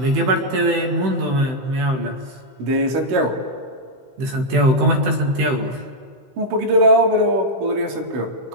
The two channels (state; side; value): late; left; 16 ms